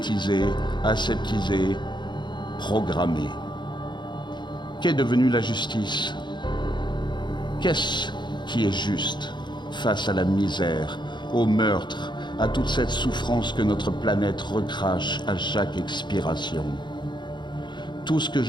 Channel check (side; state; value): right; late; 0.22 ms